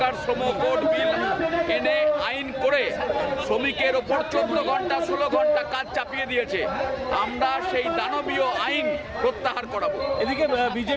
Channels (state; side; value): identical; both; correlation 1.00